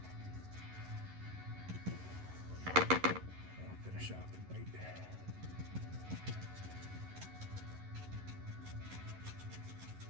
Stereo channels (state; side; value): late; left; 11 ms